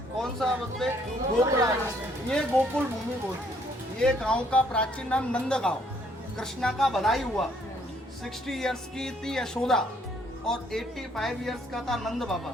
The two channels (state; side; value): normal; both; correlation 0.66